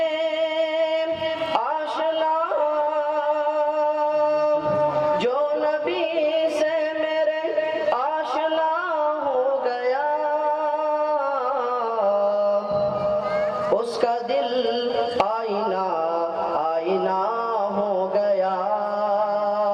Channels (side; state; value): both; identical; correlation 1.00